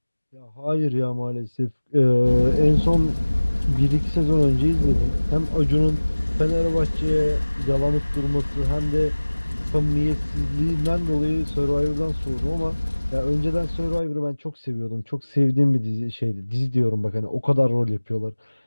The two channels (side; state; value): both; inverted; correlation -1.00